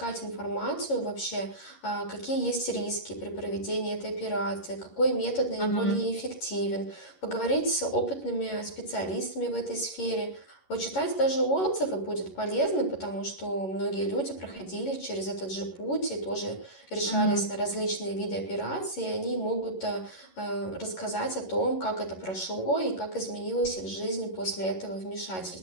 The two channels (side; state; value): right; late; 11 ms